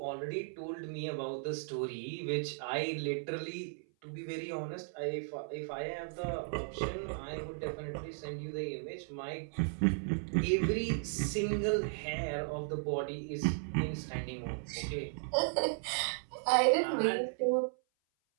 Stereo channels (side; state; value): left; silent; 54 dB below the other